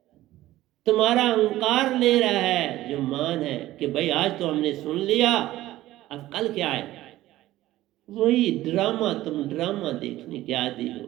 तुम्हारा अहंकार ले रहा है जो मान है कि भाई आज तो हमने सुन लिया, अब कल क्या है। वही ड्रामा, तुम ड्रामा देखने के आदी हो,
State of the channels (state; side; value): quieter; left; 15.6 dB